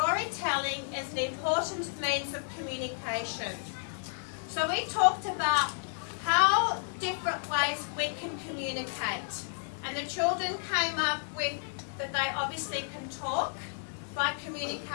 as an important means of communication. So we talked about how different ways we can communicate. And the children came up with that they obviously can talk by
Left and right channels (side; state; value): right; silent; digital silence